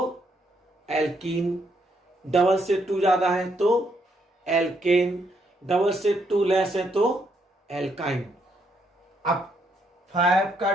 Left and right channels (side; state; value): both; normal; correlation 0.74